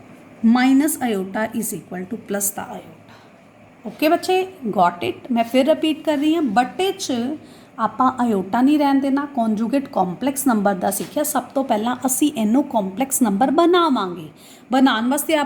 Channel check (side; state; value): both; identical; correlation 1.00